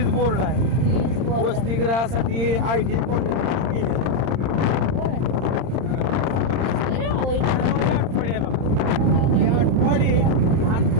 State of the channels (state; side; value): late; left; 31 ms